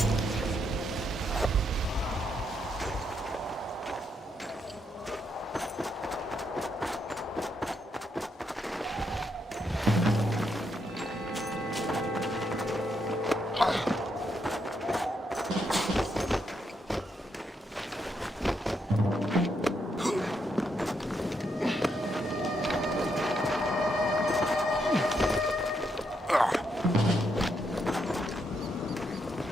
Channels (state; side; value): normal; both; correlation 0.78